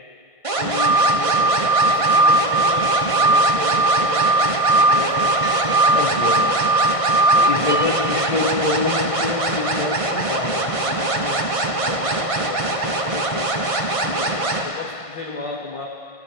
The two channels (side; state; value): right; late; 1.5 ms